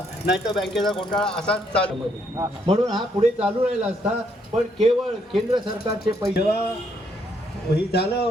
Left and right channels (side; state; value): both; normal; correlation 0.72